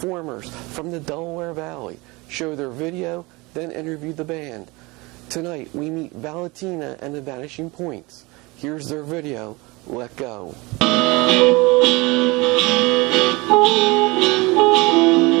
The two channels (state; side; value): quieter; left; 24.4 dB